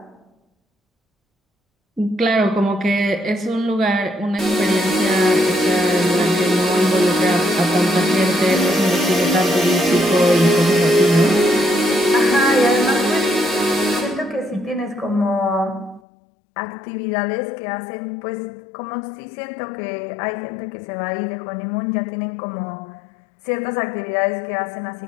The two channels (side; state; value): right; drops out; at 16.0 s